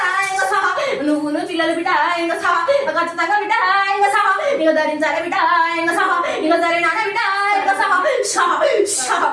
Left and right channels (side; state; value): both; identical; correlation 1.00